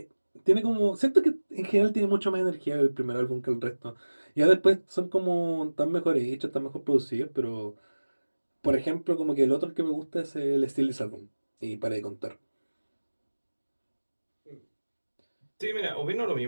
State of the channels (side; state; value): both; inverted; correlation -1.00